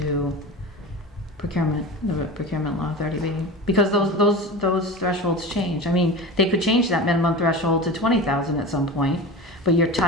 procurement, the procurement law 30B, because those thresholds change. I mean, they could change that minimum threshold to 20,000 at some point, but you're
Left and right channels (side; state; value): both; normal; correlation 0.30